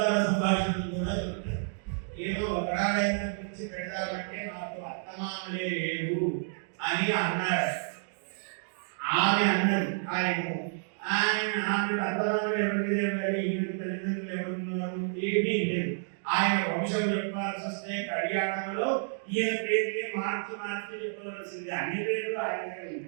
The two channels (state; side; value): silent; left; digital silence